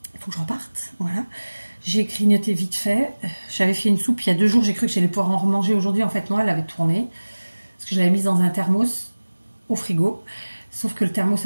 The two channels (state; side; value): inverted; both; correlation -1.00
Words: faut que je reparte, voilà. J'ai grignoté vite fait. J'avais fait une soupe il y a 2 jours. J'ai cru que j'allais pouvoir en remanger aujourd'hui. En fait, non, elle avait tourné. Parce que je l'avais mise dans un thermos au frigo. Sauf que le thermos